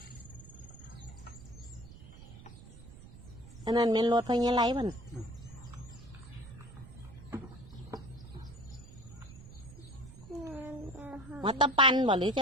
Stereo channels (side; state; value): right; noise; rumble, 16 dB below the sound